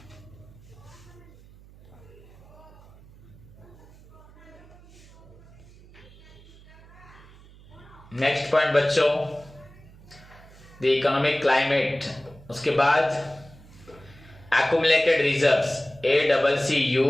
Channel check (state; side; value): noise; right; hum, 22 dB below the sound